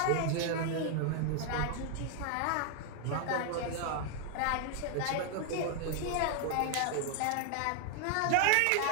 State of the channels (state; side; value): different; both; correlation 0.00